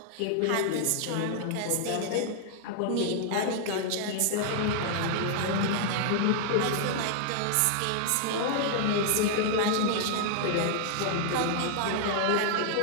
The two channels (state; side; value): different; both; correlation -0.01